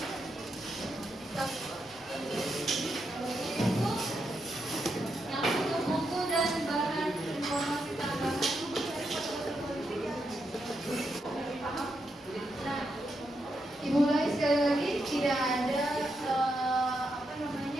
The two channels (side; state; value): both; normal; correlation 0.83